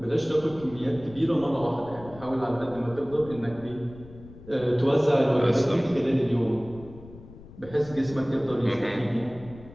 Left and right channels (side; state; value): left; noise; rumble, 18 dB below the sound